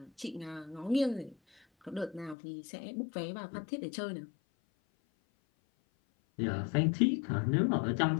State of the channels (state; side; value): drops out; right; at 2.4 s